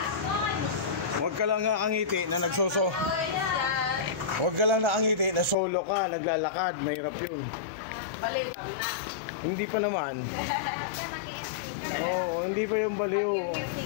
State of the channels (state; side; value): drops out; right; at 5.6 s